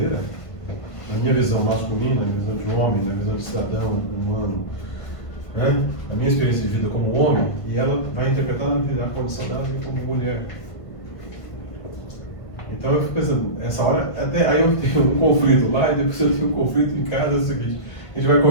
na minha visão masculina, na minha visão de homem, na visão de cidadão, humano, né? A minha experiência de vida como homem, e ela vai interpretar a condição dela como mulher. Então eu fico pensando, essa hora, até aí eu tenho um conflito lá, e depois eu tenho um conflito em casa, é o seguinte, a gente vai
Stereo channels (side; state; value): right; late; 1.5 ms